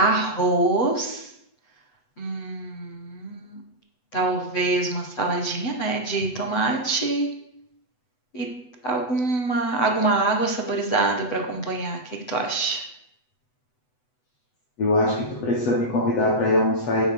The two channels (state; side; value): late; right; 8.0 ms